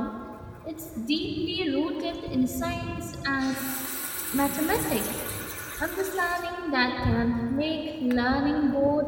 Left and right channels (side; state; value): both; identical; correlation 1.00